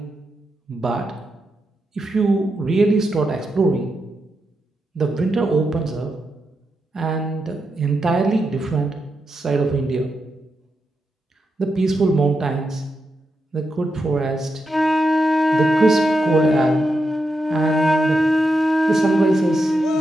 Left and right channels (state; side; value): normal; both; correlation 0.86